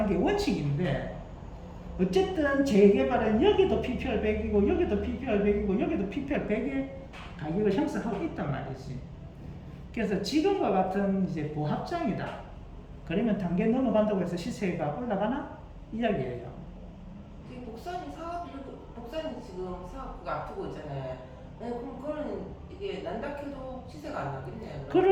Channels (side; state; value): both; identical; correlation 1.00